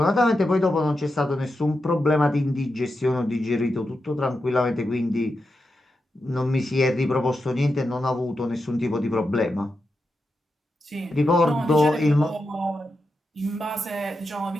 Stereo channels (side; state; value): both; normal; correlation 0.88